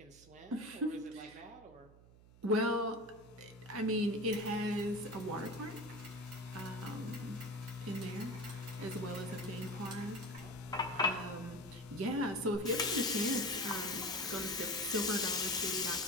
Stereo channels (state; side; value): noise; right; hum, 23 dB below the sound